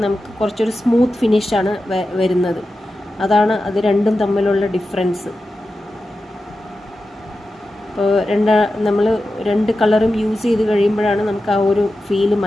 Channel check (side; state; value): both; normal; correlation 0.92